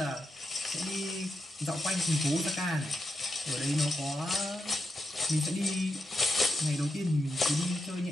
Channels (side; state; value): both; normal; correlation 0.87